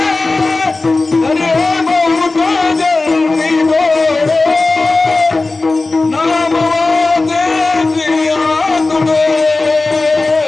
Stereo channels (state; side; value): quieter; right; 3.4 dB